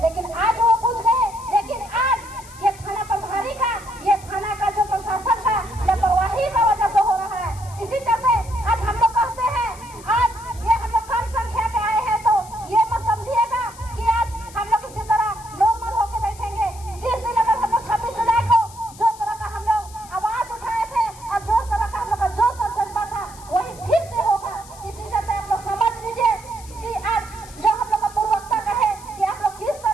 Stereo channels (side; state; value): left; noise; hiss, 20 dB below the sound